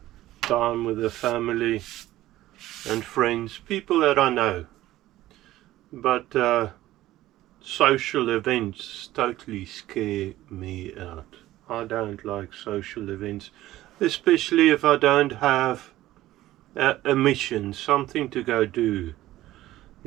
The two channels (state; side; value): quieter; left; 15.4 dB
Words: time with the family and friends, people that I know, but social events totally scare me out. I don't like social events, especially if I don't have a mission, something to go do,